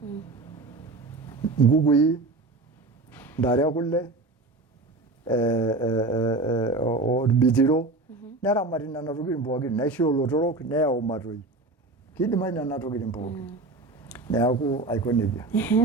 nkukui ntare ekule orbitiro neramati nena tokitin pookin naisho olotorok neyau matoi kidimayu nena tokitin pookin neeku aiko nejia.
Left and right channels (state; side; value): quieter; left; 3.2 dB